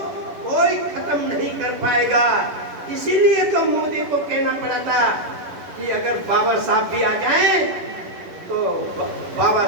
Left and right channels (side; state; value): left; late; 11 ms